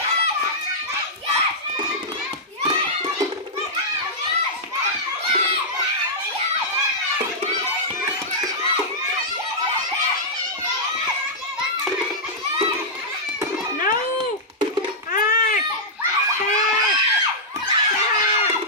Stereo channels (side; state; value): both; normal; correlation -0.10